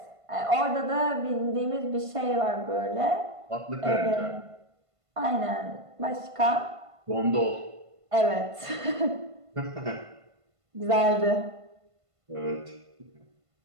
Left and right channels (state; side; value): late; left; 1.5 ms